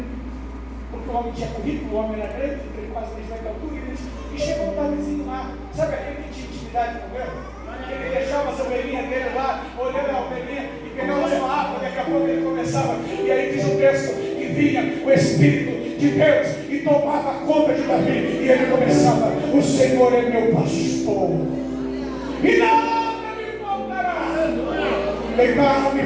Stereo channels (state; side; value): identical; both; correlation 1.00